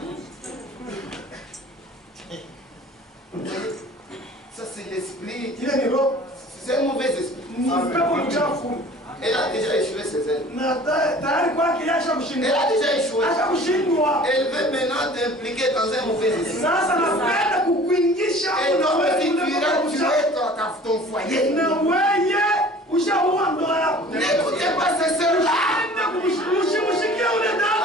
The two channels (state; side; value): normal; both; correlation 0.46